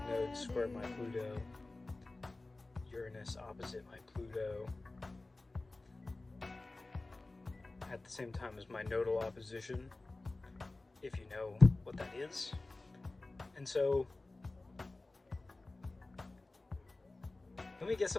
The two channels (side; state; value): right; quieter; 3.1 dB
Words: node square my Pluto, Uranus opposite my Pluto, at the same time as my nodal opposition, if you know what that is. And so, let me get